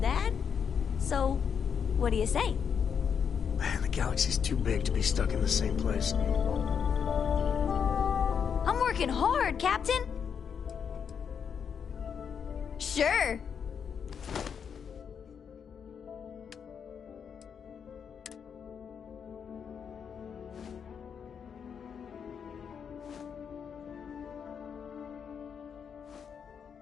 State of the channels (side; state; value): right; quieter; 7.1 dB